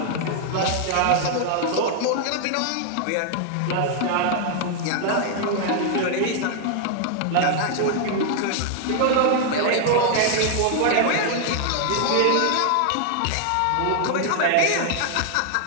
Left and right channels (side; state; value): both; different; correlation 0.00